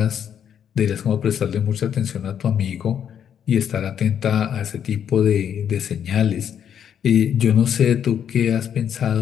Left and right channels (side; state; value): right; quieter; 8.8 dB